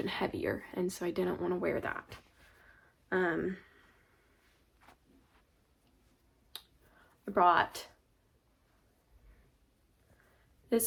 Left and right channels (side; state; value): both; identical; correlation 1.00